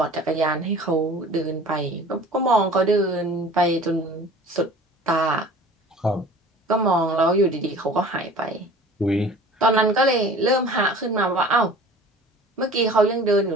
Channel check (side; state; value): both; normal; correlation 0.44